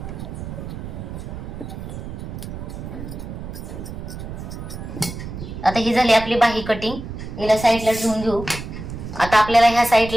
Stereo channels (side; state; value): right; noise; rumble, 9 dB below the sound